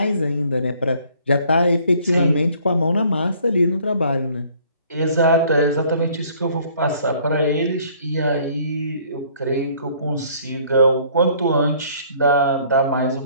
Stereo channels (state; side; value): inverted; both; correlation -0.58